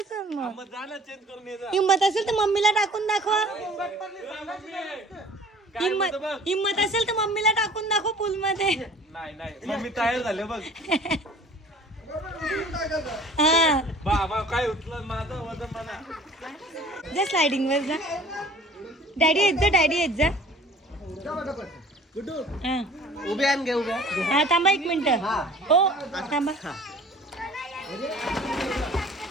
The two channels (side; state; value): both; normal; correlation 0.48